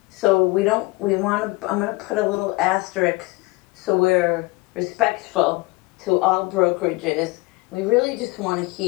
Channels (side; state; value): right; quieter; 23.7 dB